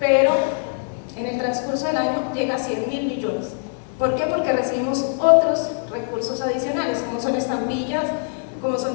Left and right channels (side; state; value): right; silent; 64 dB below the other